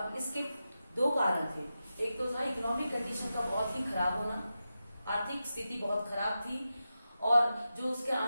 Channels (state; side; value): inverted; both; correlation -0.91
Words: इसके दो कारण थे, एक तो था इकोनॉमिक कंडीशन का बहुत ही खराब होना, आर्थिक स्थिति बहुत खराब थी और जो उसके